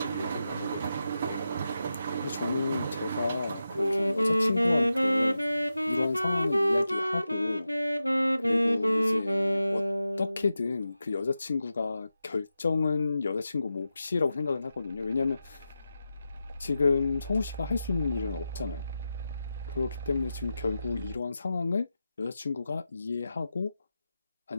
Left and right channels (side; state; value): both; inverted; correlation -0.91